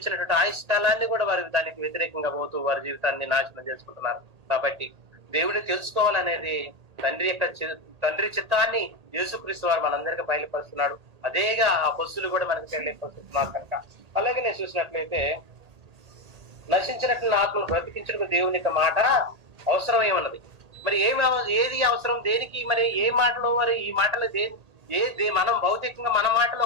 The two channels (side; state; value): left; late; 1.8 ms